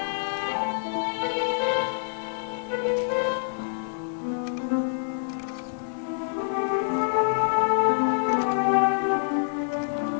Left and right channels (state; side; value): silent; right; digital silence